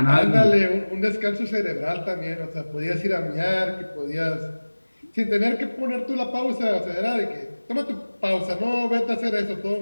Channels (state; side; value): inverted; both; correlation -1.00